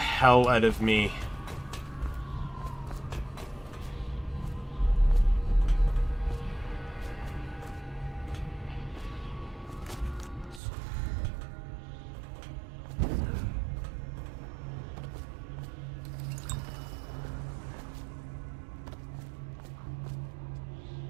out of me.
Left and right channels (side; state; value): left; drops out; at 10.6 s